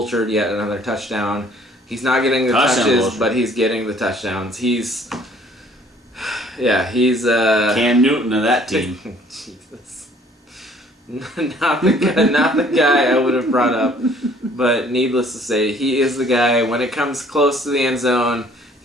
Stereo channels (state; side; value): normal; both; correlation 0.58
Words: yet another touchdown. He's not getting the touches, but he's getting the touchdowns. He's Cam Newton of that team. Jesus. Not the guy I would have brought up, but needless to say, he is the guy. When it comes close to the end zone,